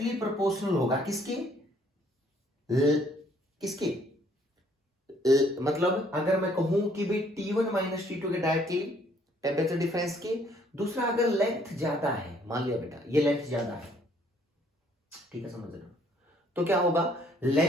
प्रोपोर्शनल होगा किसके? किसके? मतलब अगर मैं कहूं कि भाई T1 माइनस T2 के डायरेक्टली टेम्परेचर डिफरेंस के। दूसरा, अगर लेंथ ज्यादा है, मान लिया बेटा ये लेंथ ज्यादा है, ठीक है, समझ रहे हो, तो क्या होगा?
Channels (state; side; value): normal; both; correlation 0.63